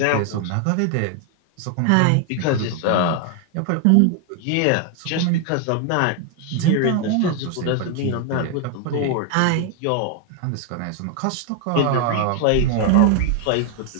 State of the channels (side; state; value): both; different; correlation 0.00